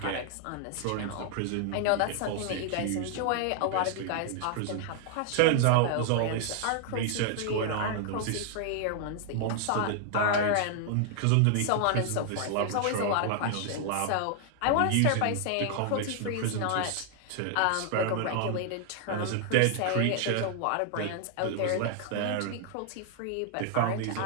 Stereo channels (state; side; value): different; both; correlation 0.00